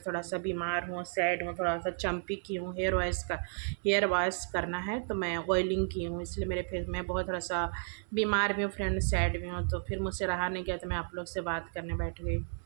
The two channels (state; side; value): silent; left; 56 dB below the other